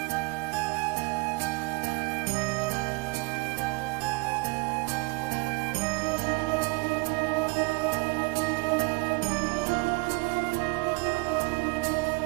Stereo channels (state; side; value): quieter; left; 26.9 dB